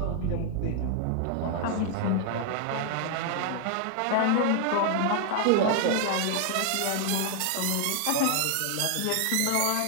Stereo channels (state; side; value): different; both; correlation 0.00